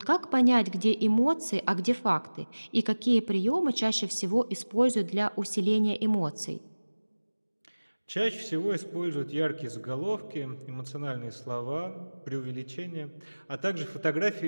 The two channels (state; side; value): inverted; both; correlation -1.00